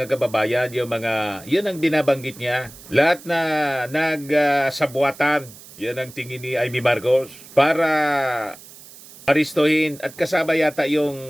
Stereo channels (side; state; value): right; noise; hiss, 19 dB below the sound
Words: kababayan, yun ang binabanggit niya. Lahat na nagsabuatan, yun ang tingin ni Amy Marcos para aristohin at kasama yata